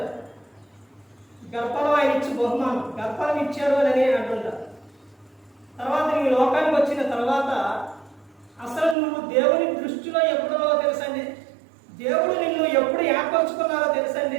గర్భఫలం ఆయన ఇచ్చి బహుమానం, గర్భఫలం ఇచ్చాడు అని అంటుంటారు. తర్వాత ఈ లోకానికి వచ్చిన తర్వాత అసలు నువ్వు దేవుని దృష్టిలో ఎప్పుడో తెలుసండి, దేవుడు నిన్ను ఎప్పుడు ఏర్పాటు ఏర్పరచుకున్నారో తెలుసండి?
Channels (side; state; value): left; drops out; at 9.0 s